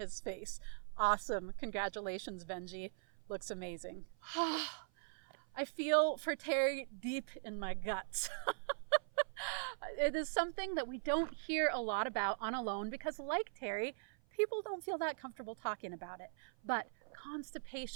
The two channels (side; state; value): left; silent; 51 dB below the other